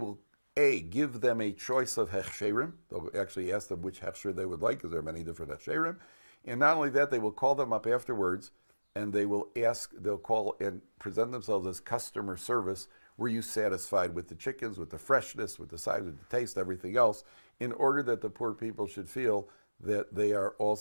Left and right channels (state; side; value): inverted; both; correlation -1.00